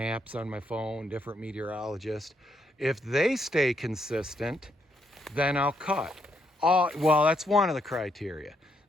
on my phone, different meteorologists, if they stay consistent, then I'll cut. Well, that's one of the criteria.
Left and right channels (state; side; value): normal; both; correlation 0.76